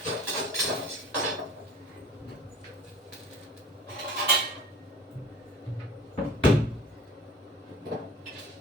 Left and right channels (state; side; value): normal; both; correlation 0.43